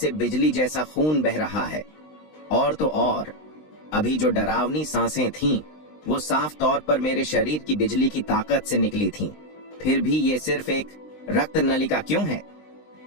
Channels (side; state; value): right; late; 20 ms